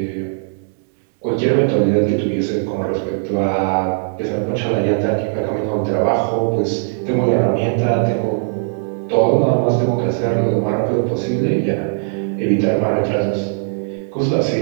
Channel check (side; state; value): left; silent; digital silence